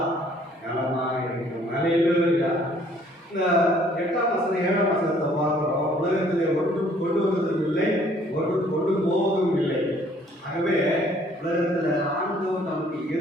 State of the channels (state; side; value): normal; both; correlation 0.60